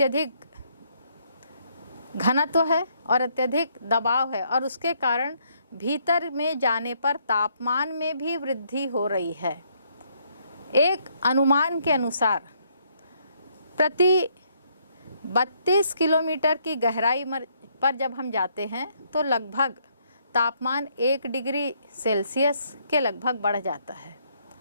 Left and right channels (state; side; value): inverted; both; correlation -0.71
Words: घनत्व है और अत्यधिक दबाव है और उसके कारण भीतर में जाने पर तापमान में भी वृद्धि हो रही है। एक अनुमान के अनुसार प्रति 32 किलोमीटर की गहराई पर जब हम जाते हैं तो लगभग तापमान 1 डिग्री सेल्सियस के लगभग बढ़ जाता है।